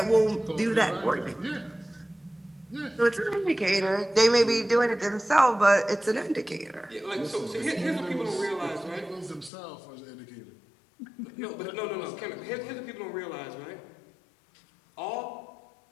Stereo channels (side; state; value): right; drops out; at 9.5 s